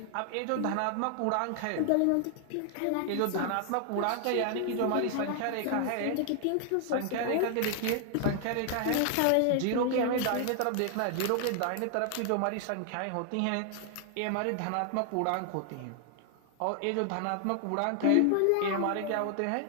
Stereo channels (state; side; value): different; both; correlation 0.00